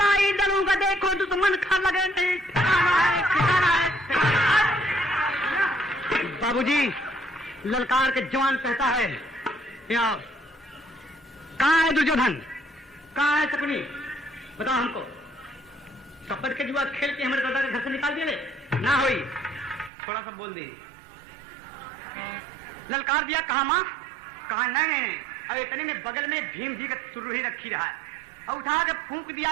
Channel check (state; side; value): drops out; left; at 19.9 s